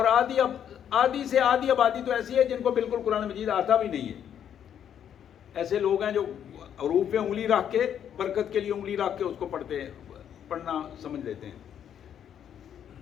آدھی سے آدھی آبادی تو ایسی ہے جن کو بالکل قرآن مجید آتا بھی نہیں ہے۔ ایسے لوگ ہیں جو حروف پہ انگلی رکھ کے، برکت کے لیے انگلی رکھ کے اس کو پڑھتے ہیں، پڑھنا سمجھ لیتے ہیں۔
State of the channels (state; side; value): quieter; right; 9.2 dB